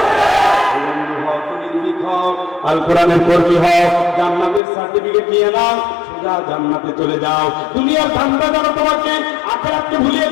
আল কোরআনের কর্মী হও, জান্নাতের সার্টিফিকেট নিয়ে নাও, সোজা জান্নাতে চলে যাও। দুনিয়ার ধান্দা যারা তোমাকে আখিরাতকে ভুলিয়ে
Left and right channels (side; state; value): right; drops out; at 4.6 s